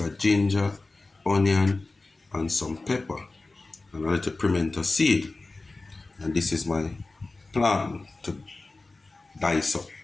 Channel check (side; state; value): right; quieter; 3.4 dB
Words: ginger, onion, and some pepper. And a little pimento seed. And this is my plan to dice up.